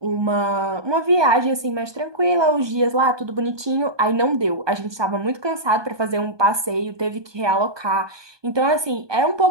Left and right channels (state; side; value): late; left; 1.2 ms